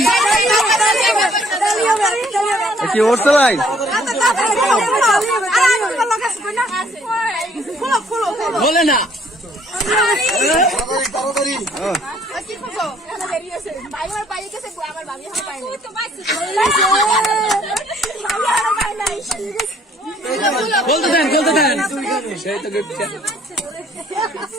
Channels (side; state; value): both; normal; correlation 0.62